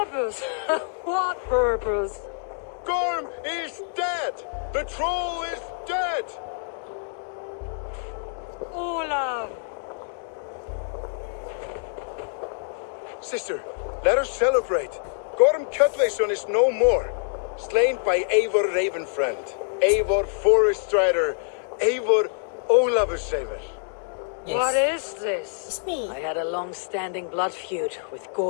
What purpose? Gorm is dead! The troll is dead! Olav! Sister, let us celebrate. Gorm Cutlason is no more. Slain by Eivor Ravenfriend, Eivor Forest Strider, Eivor Olavursaver. Yes. What is this? It's me. I had a long-standing blood feud with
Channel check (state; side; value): silent; right; digital silence